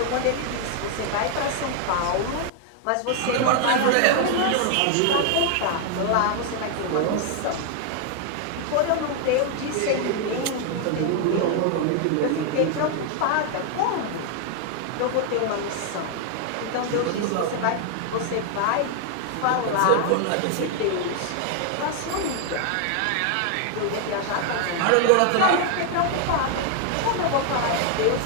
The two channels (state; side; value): different; both; correlation 0.00